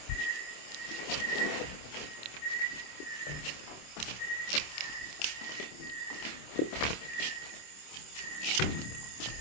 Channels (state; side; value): late; right; 26 ms